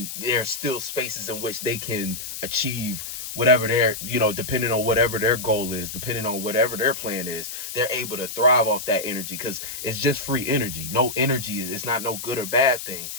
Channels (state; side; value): noise; left; hiss, 8 dB below the sound